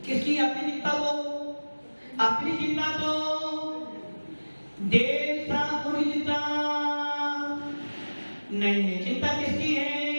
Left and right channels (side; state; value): both; inverted; correlation -1.00